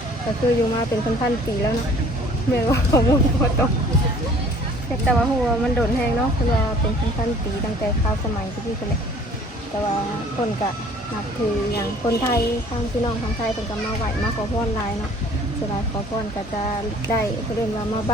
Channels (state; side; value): normal; both; correlation 0.53